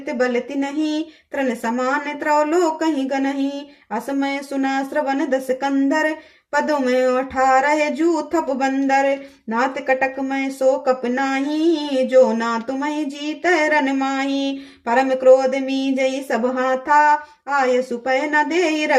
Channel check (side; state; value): both; identical; correlation 1.00